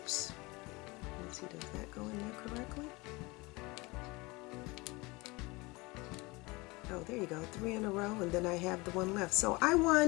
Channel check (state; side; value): quieter; right; 24.2 dB